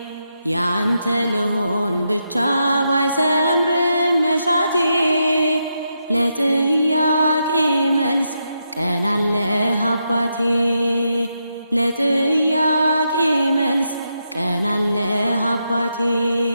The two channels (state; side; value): inverted; both; correlation -0.83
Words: ያንተ ልሆን ብቻ ባይሰምርም መሻቴ ለጥያቄ መልስ ቀናለህ አባቴ ለጥያቄ መልስ ቀናለህ አባቴ